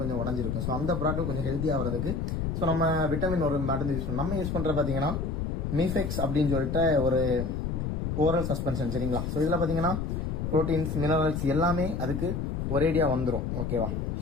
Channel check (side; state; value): left; noise; rumble, 2 dB below the sound